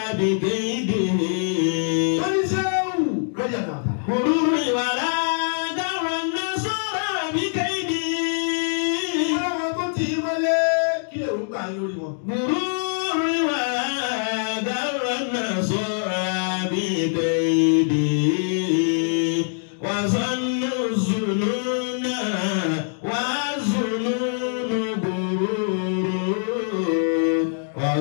bi kaidi. Gururu ìwàlá darranna sara bi kaidi. Ọlọ́wọ́ tó ti mọ́lé kí lè rúgbà yín lórí wọn. Gururu ìwàlá darranna sara bi kaidi. Wa zannu zununa wa zununu gururu. Wa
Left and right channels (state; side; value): silent; right; digital silence